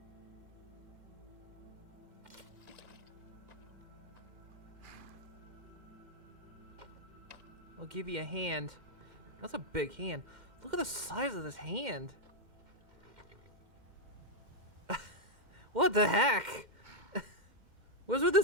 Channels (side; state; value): left; late; 2.1 ms